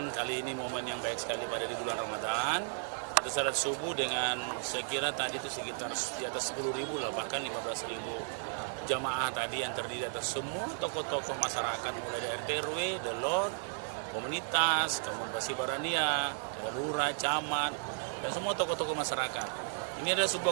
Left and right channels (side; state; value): left; silent; digital silence